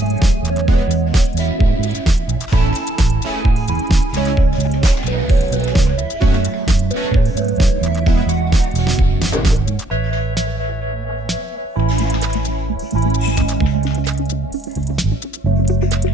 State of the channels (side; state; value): both; normal; correlation 0.69